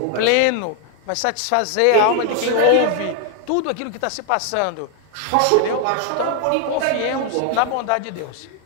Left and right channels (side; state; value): both; different; correlation 0.00